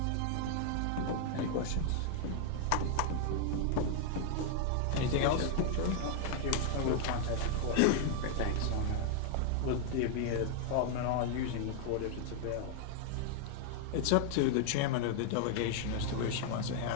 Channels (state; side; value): different; both; correlation 0.00